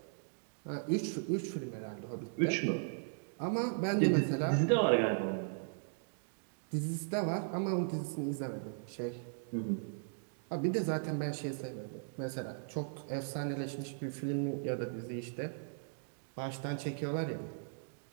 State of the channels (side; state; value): left; silent; digital silence